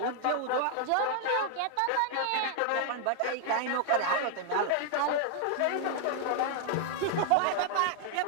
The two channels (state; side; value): different; both; correlation 0.00